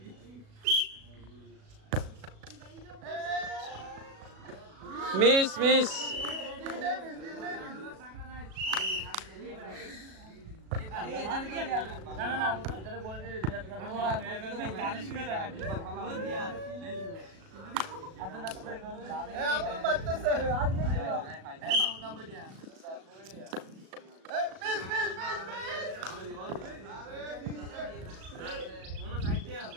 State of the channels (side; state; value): left; late; 37 ms